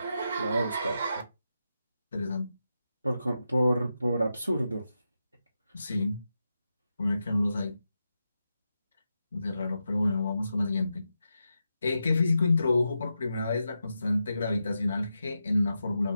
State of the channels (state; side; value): inverted; both; correlation -0.88